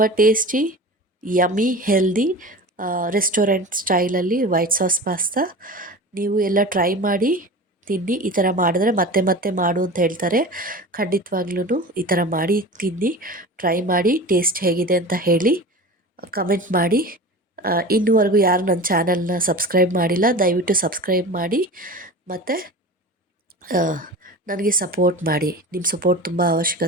ಟೇಸ್ಟಿ, ಯಮ್ಮಿ, ಹೆಲ್ದಿ ರೆಸ್ಟೋರೆಂಟ್ ಸ್ಟೈಲಲ್ಲಿ ವೈಟ್ ಸಾಸ್ ಪಾಸ್ತಾ. ನೀವು ಎಲ್ಲ ಟ್ರೈ ಮಾಡಿ ತಿನ್ನಿ. ಈ ಥರ ಮಾಡಿದ್ರೆ ಮತ್ತೆ ಮತ್ತೆ ಮಾಡು ಅಂತ ಹೇಳ್ತಾರೆ. ಖಂಡಿತವಾಗ್ಲೂ ಈ ಥರ ಮಾಡಿ ತಿನ್ನಿ, ಟ್ರೈ ಮಾಡಿ, ಟೇಸ್ಟ್ ಹೇಗಿದೆ ಅಂತ ಹೇಳಿ ಕಮೆಂಟ್ ಮಾಡಿ. ಇನ್ನೂವರೆಗೂ ಯಾರು ನನ್ನ ಚಾನಲ್ನ ಸಬ್ಸ್ಕ್ರೈಬ್ ಮಾಡಿಲ್ಲ, ದಯವಿಟ್ಟು ಸಬ್ಸ್ಕ್ರೈಬ್ ಮಾಡಿ ಮತ್ತು ನನಗೆ ಸಪೋರ್ಟ್ ಮಾಡಿ. ನಿಮ್ಮ ಸಪೋರ್ಟ್ ತುಂಬ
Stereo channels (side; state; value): both; normal; correlation 0.33